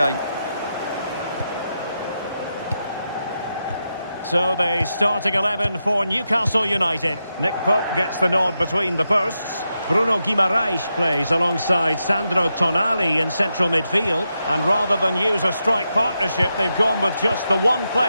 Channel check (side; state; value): both; inverted; correlation -0.86